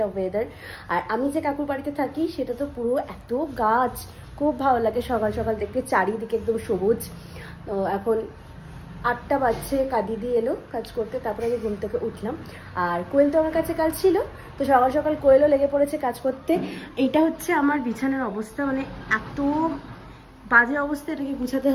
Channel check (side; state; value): both; identical; correlation 1.00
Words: ওয়েদার। আর আমি যে কাকুর বাড়িতে থাকি সেটা তো পুরো এত গাছ, খুব ভালো লাগে সকাল সকাল দেখতে, চারিদিকে একদম সবুজ। তো এখন 8টা বাজছে, দিদি এলো কাজ করতে, তারপরে আমি ঘুম থেকে উঠলাম। আর কোয়েল তো আমার কাছে কাজ ছিল, তো সকাল সকাল কোয়েলও লেগে পড়েছে কাজ করতে। এইটা হচ্ছে আমার বিছানার অবস্থা, মানে এত বাজে অবস্থা, এটাকে গুছাতে